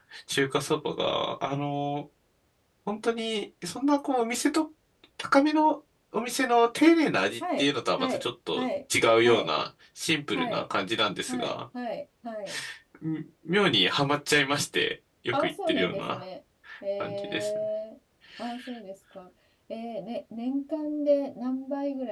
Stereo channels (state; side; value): identical; both; correlation 1.00